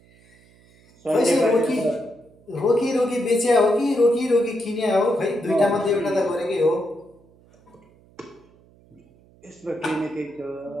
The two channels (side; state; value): right; noise; hum, 29 dB below the sound